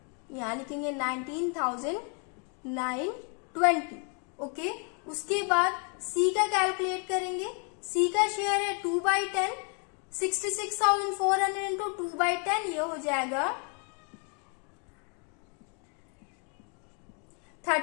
यहां लिखेंगे 19,920। ओके, उसके बाद सी का कैलकुलेट करेंगे। सी का शेयर है 2/10, 66,400 इंटू 2/10, ये हो जाएगा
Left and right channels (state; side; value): quieter; right; 38.3 dB